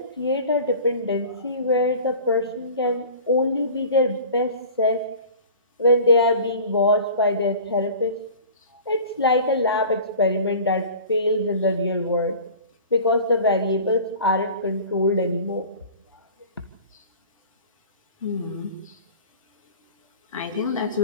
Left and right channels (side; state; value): both; inverted; correlation -0.41